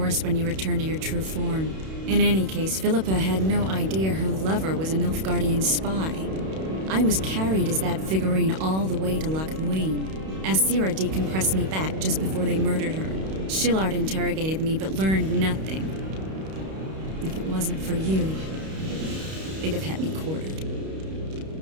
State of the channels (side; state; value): left; late; 31 ms